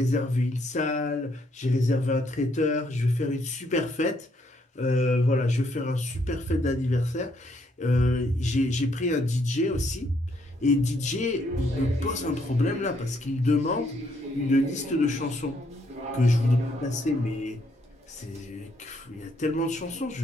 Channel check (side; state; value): both; normal; correlation 0.71